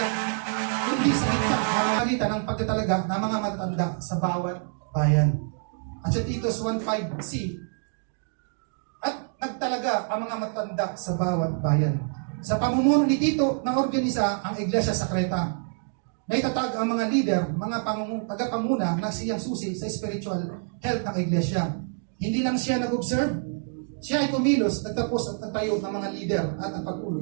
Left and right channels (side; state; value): left; silent; 60 dB below the other